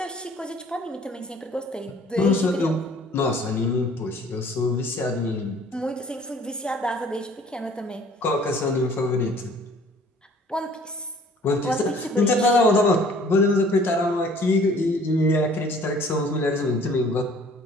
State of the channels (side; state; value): both; normal; correlation 0.54